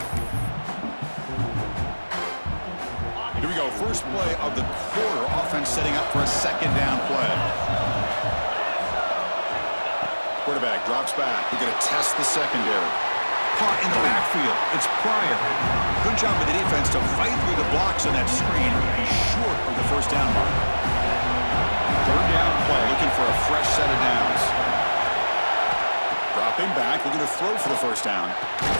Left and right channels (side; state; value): both; inverted; correlation -1.00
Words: Here we go, first play of the quarter. Offense setting up for a second down play. Quarterback drops back. We're going to test the secondary. Caught in the backfield. It's Pryor. Good job by the defense to fight through the blocks on that screen. He's short of the first down mark. Third down play, looking for a fresh set of downs. Dropping back, looking to throw for the first down.